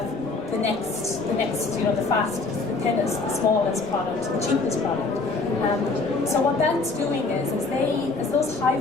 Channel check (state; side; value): quieter; right; 3.8 dB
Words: the next, the fastest, the thinnest, the smallest product, the cheapest product. So what that's doing is as those high